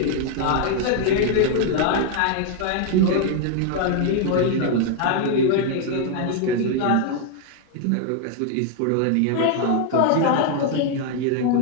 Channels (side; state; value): both; different; correlation 0.00